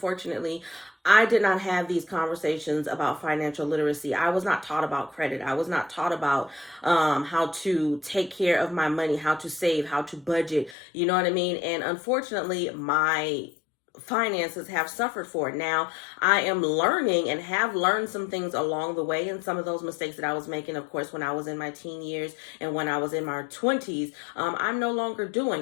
I did not have these conversations about financial literacy. I was not taught about credit. I was not taught about how to take care of my money, how to save, how to budget. You know what I mean? And unfortunately, my finances have suffered for it. Now, I am learning and have learned some things along the way, and some of those mistakes that I was making, of course, when I was in my teen years and when I was in my 20s, I'm no longer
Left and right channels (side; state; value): right; drops out; at 10.8 s